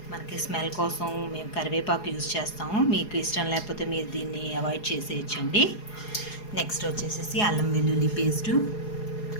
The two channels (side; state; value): right; late; 4.8 ms